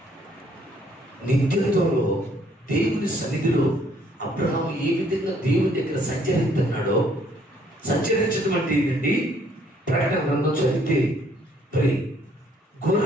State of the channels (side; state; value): both; normal; correlation 0.64